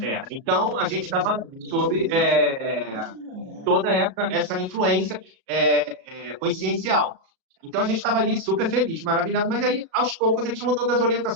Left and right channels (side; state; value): left; late; 36 ms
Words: Então, a gente estava sob toda essa influência consciencial. Então, a gente estava ali super feliz, maravilhado, mas aí, aos poucos, a gente mudou das